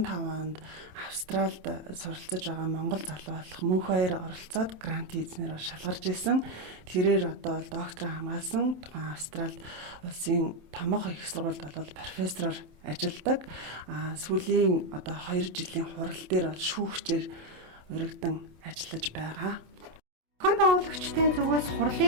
онд Австралид суралцж байгаа монгол залуу болох мөнх хоёр оролцоод грант эзнэр шалгарч исэн. Тэрээр одоо бол доктор хамгаалсан тухайн Австралид улсын томоохон их сургуульд бол профессороор ажилладаг. Сүүлийн одоо 2 жилийн хурал дээр бол шүүгчээр өргөдөн ажиллаж байгаа. Зохион байгуулагчдын зүгээс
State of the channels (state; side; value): late; left; 27 ms